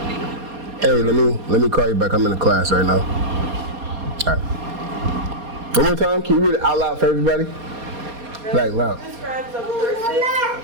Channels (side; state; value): left; late; 4.2 ms